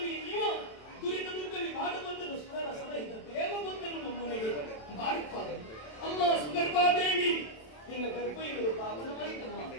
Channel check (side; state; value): right; late; 27 ms